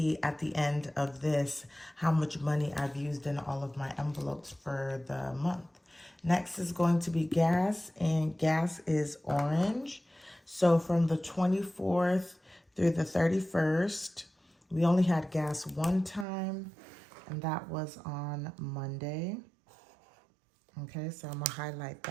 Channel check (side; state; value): left; drops out; at 16.2 s